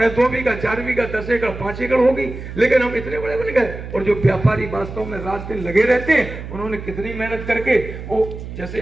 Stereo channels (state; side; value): noise; right; hum, 10 dB below the sound